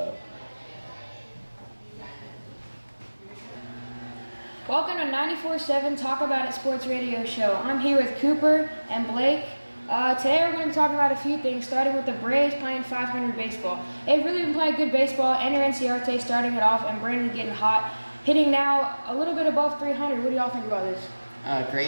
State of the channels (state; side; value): inverted; both; correlation -1.00